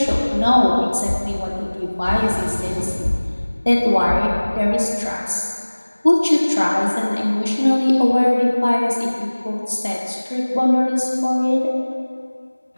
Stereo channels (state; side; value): inverted; both; correlation -1.00